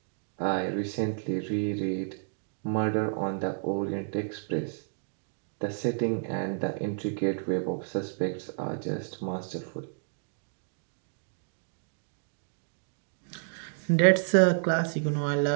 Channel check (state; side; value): silent; left; digital silence